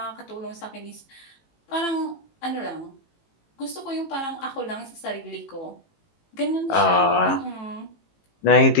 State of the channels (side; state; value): right; late; 18 ms